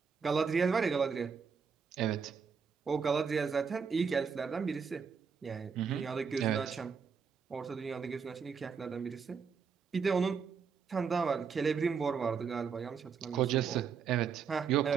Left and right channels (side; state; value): left; quieter; 6.2 dB